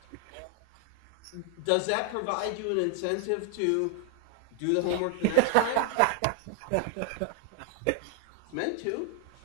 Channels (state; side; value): different; both; correlation 0.00